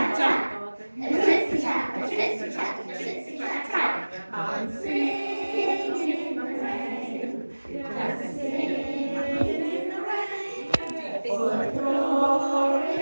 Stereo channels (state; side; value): inverted; both; correlation -1.00